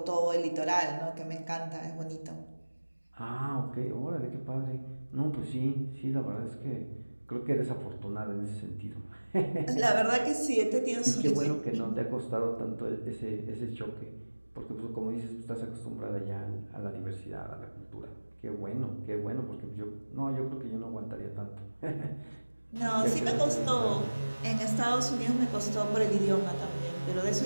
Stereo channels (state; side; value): inverted; both; correlation -1.00